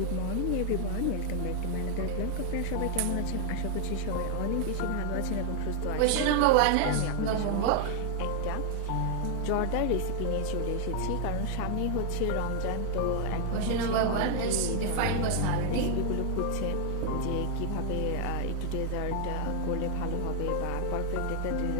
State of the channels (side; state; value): both; different; correlation 0.00